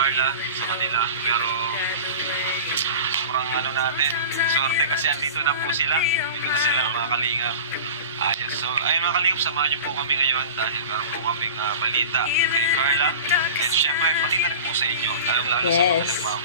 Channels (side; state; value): both; inverted; correlation -0.35